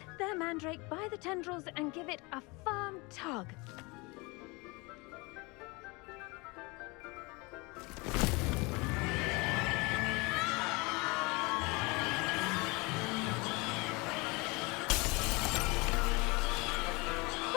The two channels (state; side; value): quieter; right; 26.5 dB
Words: their mandrake by the tendrils and give it a firm tug.